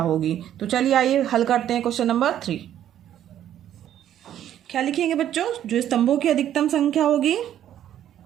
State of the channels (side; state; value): left; quieter; 11.0 dB